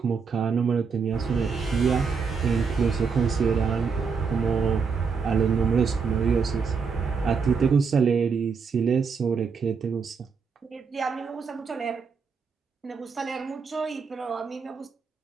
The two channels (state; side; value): quieter; left; 5.5 dB